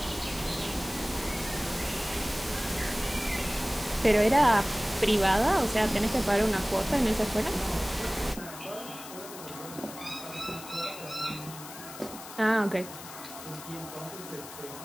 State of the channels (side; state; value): left; noise; hiss, 14 dB below the sound